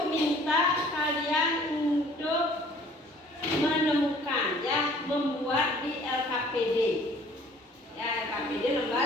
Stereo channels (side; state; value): both; normal; correlation 0.54